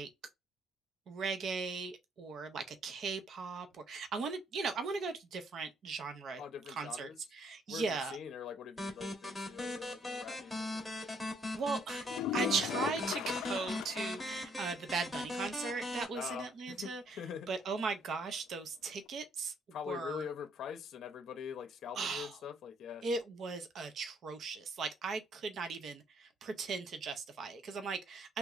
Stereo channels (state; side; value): normal; both; correlation 0.67